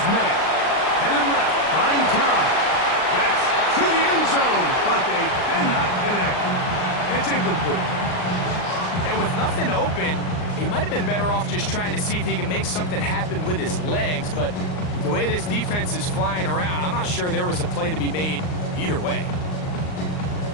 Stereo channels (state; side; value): late; right; 39 ms